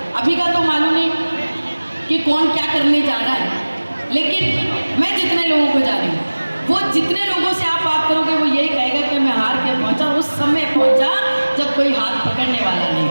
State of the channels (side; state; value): both; inverted; correlation -1.00